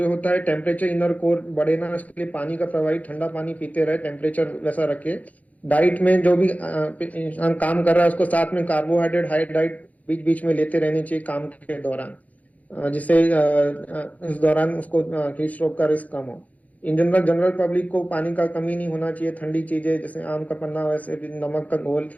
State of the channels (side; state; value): right; late; 0.073 ms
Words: होता है, टेम्परेचर इनर कोर बढ़े ना, इसके लिए पानी का प्रवाही, ठंडा पानी पीते रहे, टेम्परेचर वैसा रखे। डाइट में जो भी इंसान काम कर रहा है उसको साथ में कार्बोहाइड्रेट, हाई डाइट बीच बीच में लेते रहनी चाहिए काम के दौरान, जिससे इस दौरान उसको हीट स्ट्रोक का रिस्क कम हो। इन जनरल पब्लिक को पानी का कमी नहीं होना चाहिए। ठंडी चीजें जैसे आम का पन्ना, वैसे भी नमक का घोल,